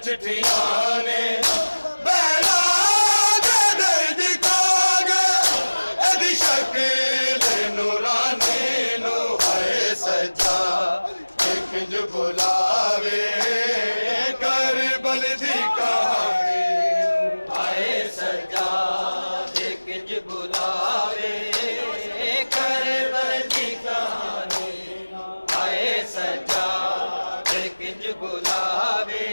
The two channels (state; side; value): inverted; both; correlation -1.00